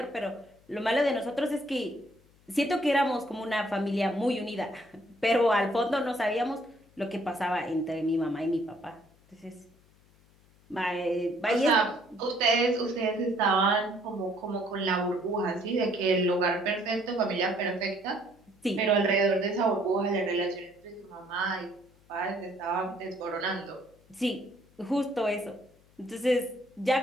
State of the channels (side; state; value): left; noise; hum, 30 dB below the sound